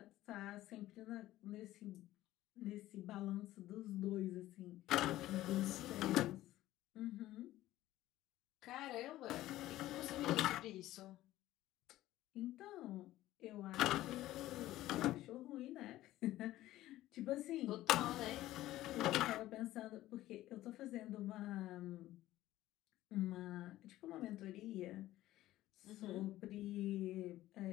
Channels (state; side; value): quieter; right; 15.3 dB